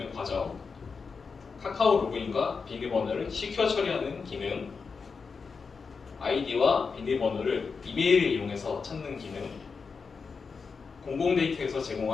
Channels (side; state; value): right; quieter; 5.1 dB